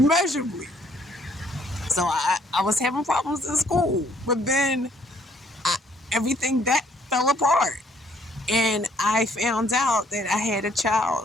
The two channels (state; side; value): normal; both; correlation 0.64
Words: So I was having problems in school, but then everything that fell apart. And I found out that I had a